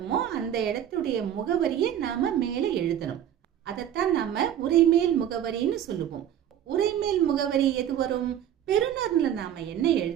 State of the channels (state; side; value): quieter; left; 10.3 dB